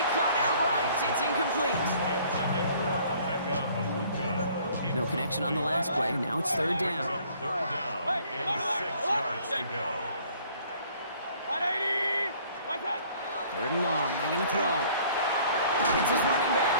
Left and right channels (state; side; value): inverted; both; correlation -0.57